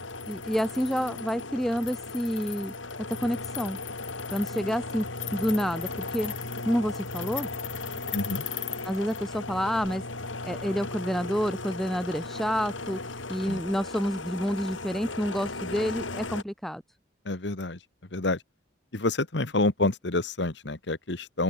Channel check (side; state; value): both; normal; correlation 0.63